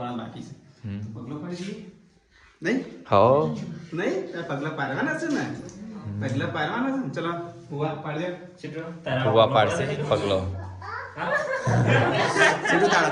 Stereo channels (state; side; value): identical; both; correlation 1.00